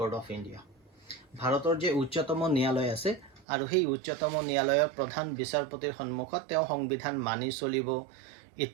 of India. ভাৰতৰ যে উচ্চতম ন্যায়ালয় আছে আৰু সেই উচ্চতম ন্যায়ালয়ৰ প্ৰধান বিচাৰপতিৰ সন্মুখত তেওঁ সংবিধান মানি চলিব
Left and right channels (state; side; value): drops out; left; at 3.5 s